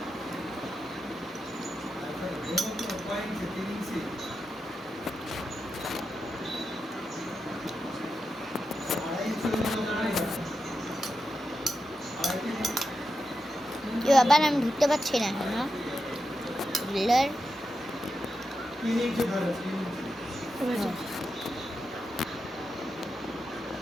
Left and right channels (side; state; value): both; normal; correlation 0.88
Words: কি আবার আমি ঢুকতে পারছি না এখন। বিল্ডার